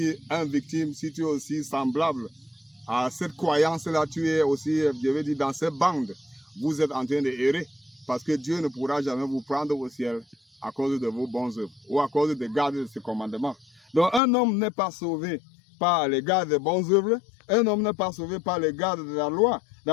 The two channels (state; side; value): drops out; right; at 14.2 s